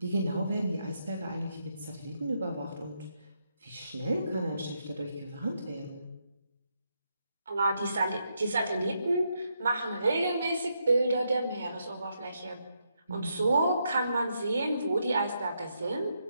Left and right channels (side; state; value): both; inverted; correlation -0.80